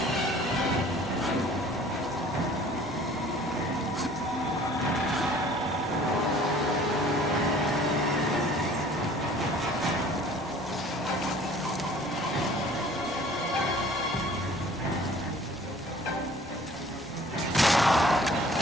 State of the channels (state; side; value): noise; left; rumble, 26 dB below the sound